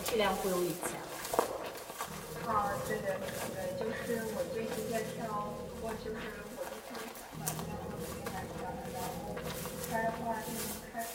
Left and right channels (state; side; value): identical; both; correlation 1.00